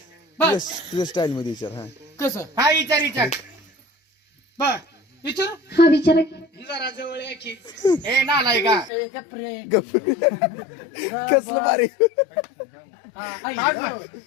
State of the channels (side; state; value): right; drops out; at 8.9 s